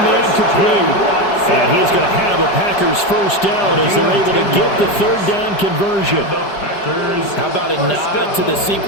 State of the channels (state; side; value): late; right; 5.0 ms